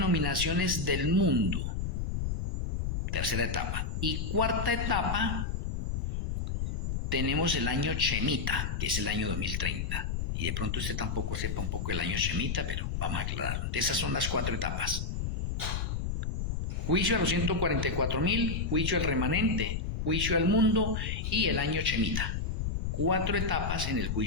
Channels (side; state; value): left; noise; rumble, 2 dB below the sound